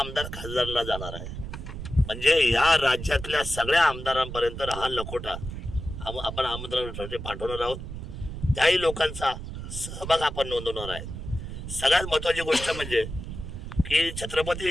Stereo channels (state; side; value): noise; right; rumble, 8 dB below the sound